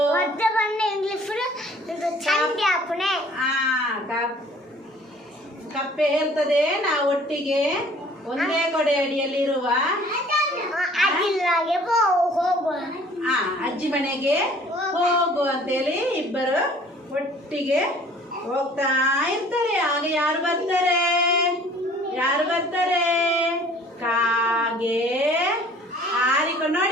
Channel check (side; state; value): both; normal; correlation 0.52